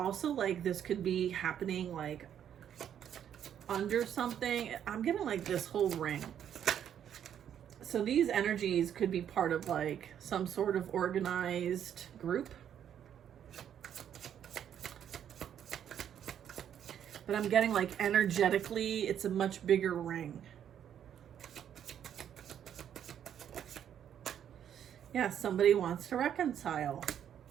like this could be happening like under something. I'm getting like this whole ring. So these energies could be part of like some sort of organized group. But I'm getting like energetically, it's a much bigger ring. Yeah, somebody wants to reconcile.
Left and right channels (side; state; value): left; quieter; 9.4 dB